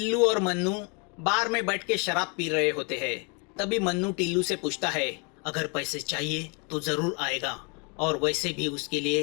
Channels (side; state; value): right; quieter; 33.7 dB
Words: और मन्नू बार में बैठ के शराब पी रहे होते हैं। तभी मन्नू टिल्लू से पूछता है, अगर पैसे चाहिए तो जरूर आएगा, और वैसे भी उसके